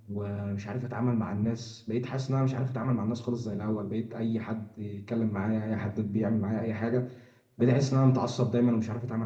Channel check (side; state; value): both; identical; correlation 1.00